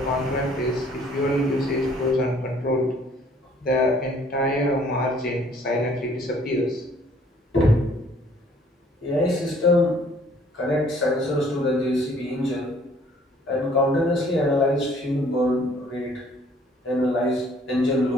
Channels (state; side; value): normal; both; correlation 0.59